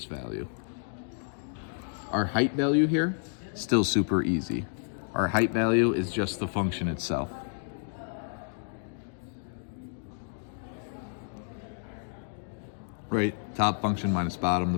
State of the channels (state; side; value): silent; right; digital silence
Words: value. Our height value here, still super easy. Our height value is just the function itself. Right, top function minus bottom, the